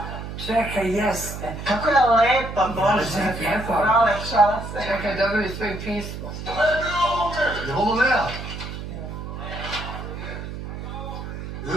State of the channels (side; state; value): right; noise; hum, 8 dB below the sound